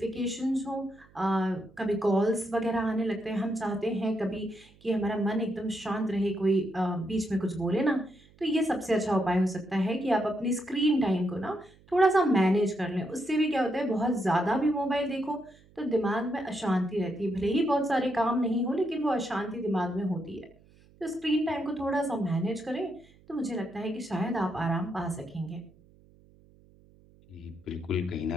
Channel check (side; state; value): right; noise; hum, 28 dB below the sound